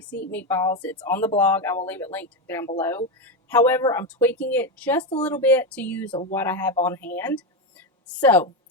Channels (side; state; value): both; normal; correlation 0.12